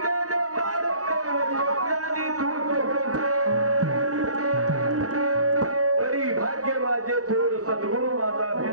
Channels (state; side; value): late; left; 0.66 ms